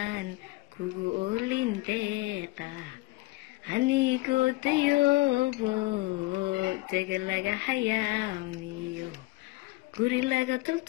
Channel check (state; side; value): quieter; right; 22.2 dB